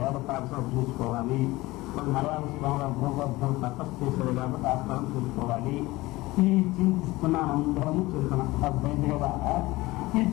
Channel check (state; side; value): quieter; right; 19.9 dB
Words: వేద పాఠశాల చూసుకోవాలి, కొన్ని మలయాళ భూగర్భం తపస్సు చేసేది కాబట్టి ఆ స్థలం చూసుకోవాలి. ఈ చింతిస్తున్నాం, అందరము చూస్తున్నాం. అర్థమైంది కదా? ఈ